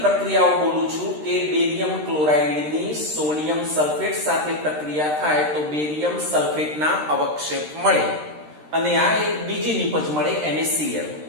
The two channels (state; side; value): late; left; 13 ms